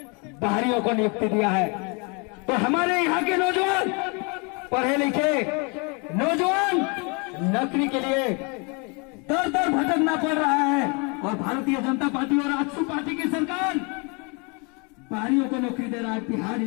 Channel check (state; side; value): quieter; right; 32.5 dB